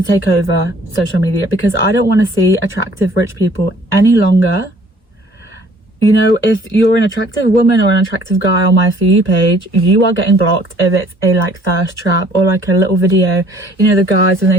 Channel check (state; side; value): normal; both; correlation 0.57